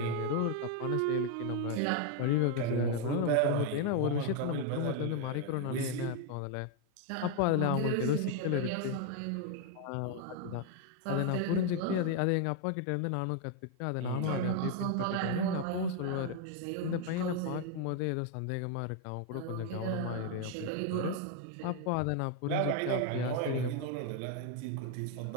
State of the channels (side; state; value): both; different; correlation 0.01